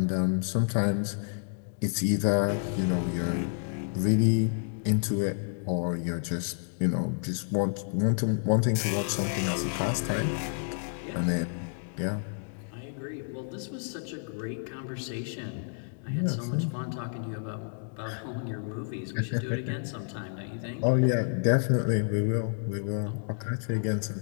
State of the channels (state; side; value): silent; right; digital silence